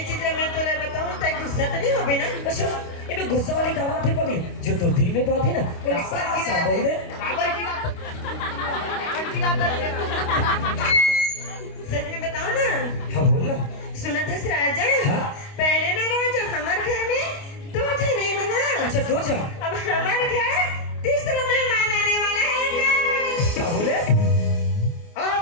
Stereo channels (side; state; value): right; late; 29 ms